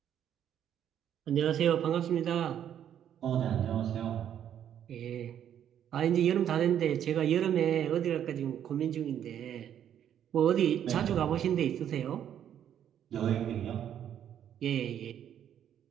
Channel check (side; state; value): left; quieter; 9.8 dB